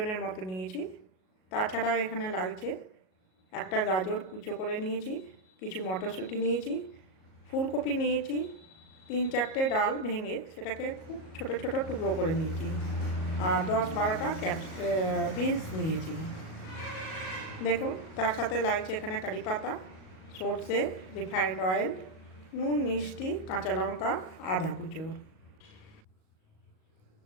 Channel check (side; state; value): right; late; 38 ms